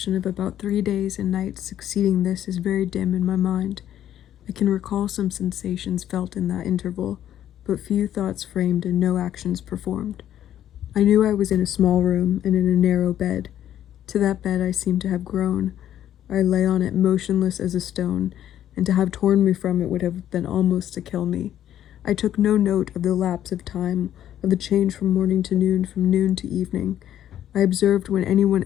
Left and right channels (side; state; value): right; quieter; 11.2 dB